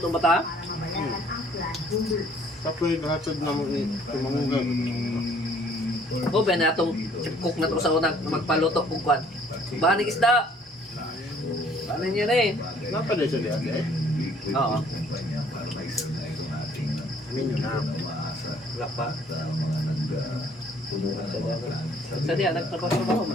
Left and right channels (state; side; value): normal; both; correlation 0.59